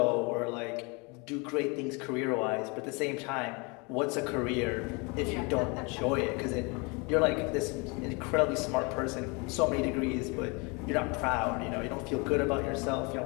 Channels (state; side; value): quieter; right; 29.7 dB